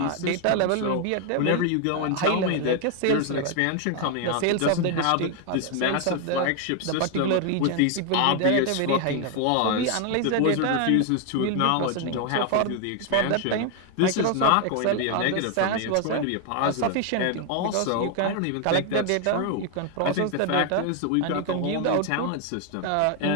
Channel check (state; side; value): different; both; correlation 0.01